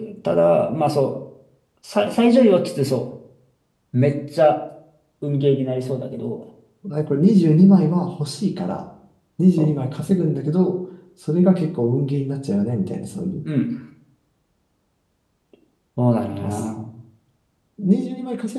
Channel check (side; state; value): both; identical; correlation 1.00